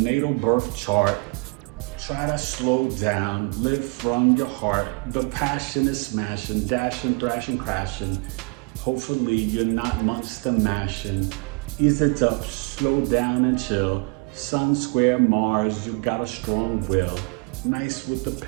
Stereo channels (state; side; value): quieter; left; 30.9 dB